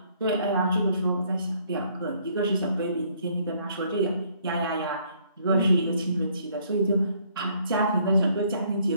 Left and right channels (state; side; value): inverted; both; correlation -0.65